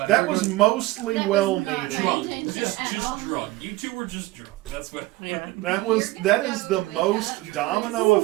That was mostly That was not well-meaning. intention Just at all. drunk. You two were just drunk. That's what. Yeah. That is the most domino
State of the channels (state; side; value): quieter; left; 19.1 dB